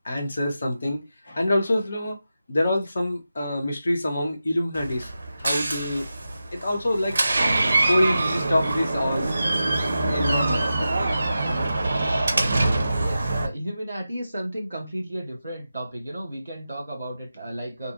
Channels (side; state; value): both; inverted; correlation -0.91